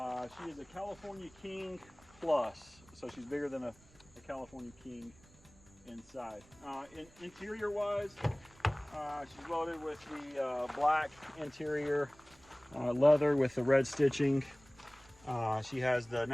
is a California King Plus, so she's bigger than a California King inside. Interior wise, she's loaded with the black interior, leather with the red stitching. She has the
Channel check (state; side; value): noise; right; rumble, 26 dB below the sound